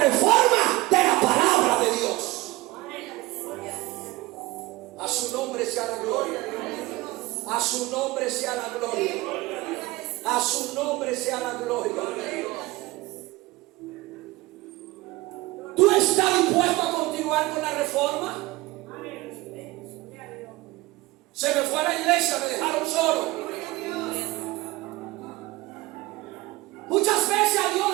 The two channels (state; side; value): quieter; left; 20.2 dB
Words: de la palabra de Dios. A su nombre sea la gloria. A su nombre sea la gloria. A su nombre sea la gloria. ¿Tú estás dispuesto a continuar con la reforma? Se me fue a la iglesia, me dejaron solo. Muchas veces a Dios